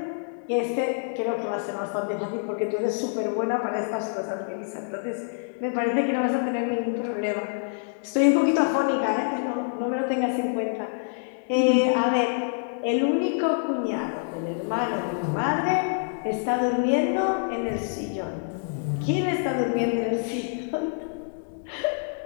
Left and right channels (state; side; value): silent; right; digital silence